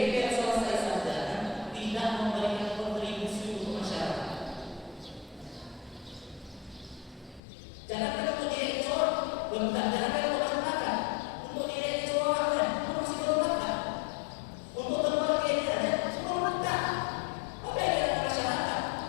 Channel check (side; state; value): right; drops out; at 7.4 s